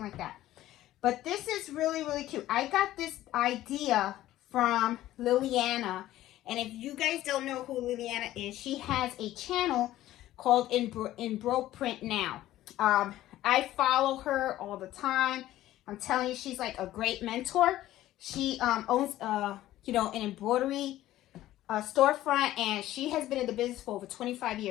like that. But this is really, really cute. I got this idea from Liliana. And if you guys don't know who Liliana is, she has a channel called Embroidery Now. I follow her all the time. I'm telling you, she's like a great mentor. She owns, an embroidery storefront, and she has been in the business for over 25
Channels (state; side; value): quieter; right; 14.5 dB